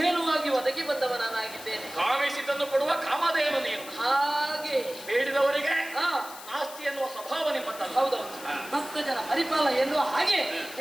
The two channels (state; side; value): noise; left; hiss, 14 dB below the sound